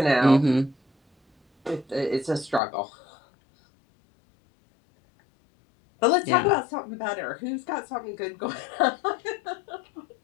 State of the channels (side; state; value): right; drops out; at 2.6 s